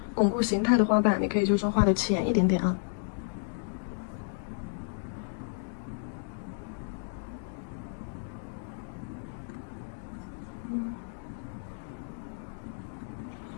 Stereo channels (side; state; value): right; silent; digital silence